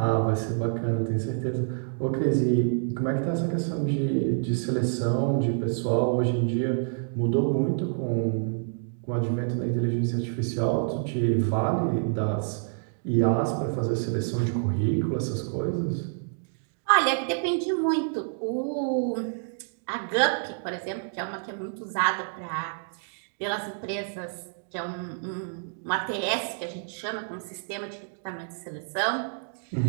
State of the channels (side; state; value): left; silent; digital silence